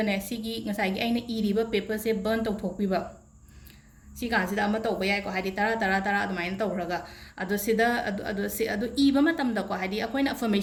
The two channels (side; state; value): both; identical; correlation 1.00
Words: ne sigi ngasai gi aina iri ba paper se burn tau thokpi ba siga sida ama tawba yai ko haidi tara adumain tawraga adu iba matam da ko haidi akoina